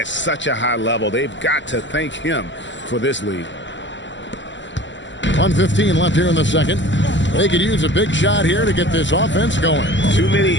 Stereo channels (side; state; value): right; late; 0.54 ms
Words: such a high level. They've got to thank him for this lead. 1:15 left here in the second. They could use a big shot here to get this offense going. Too many